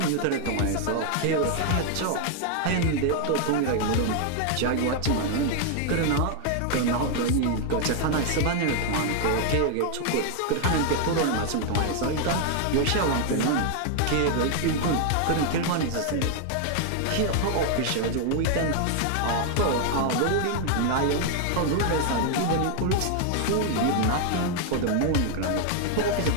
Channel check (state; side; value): different; both; correlation 0.00